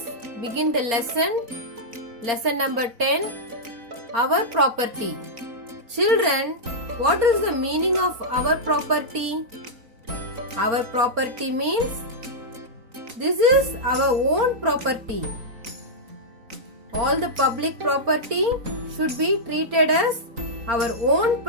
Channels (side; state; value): left; late; 4.3 ms